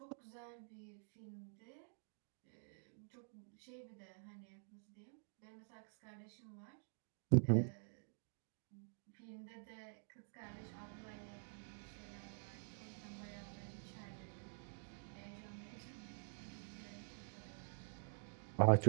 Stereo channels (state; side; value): silent; left; digital silence